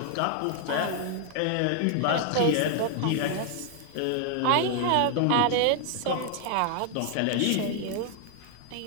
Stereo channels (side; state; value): both; different; correlation 0.00